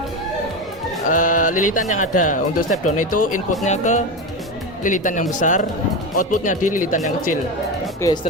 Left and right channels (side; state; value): both; normal; correlation 0.18